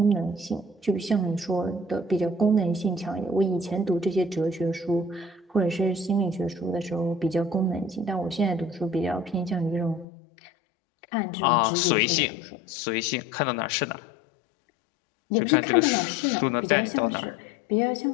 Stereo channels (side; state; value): right; drops out; at 10.1 s